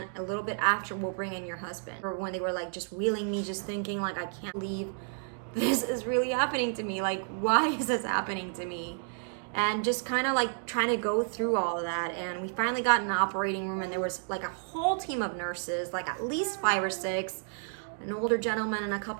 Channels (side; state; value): left; silent; digital silence